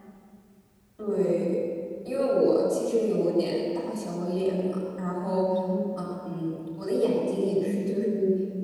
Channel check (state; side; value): identical; both; correlation 1.00